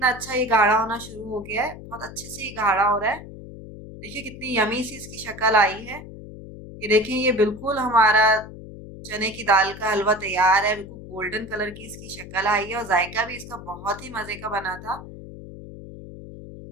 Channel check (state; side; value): noise; left; hum, 14 dB below the sound